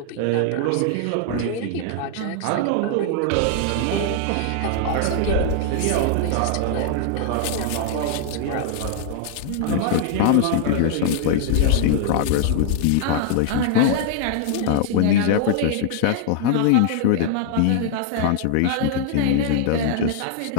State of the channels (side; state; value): both; different; correlation -0.01